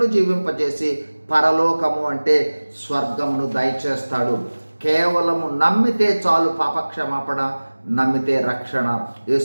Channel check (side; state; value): both; inverted; correlation -1.00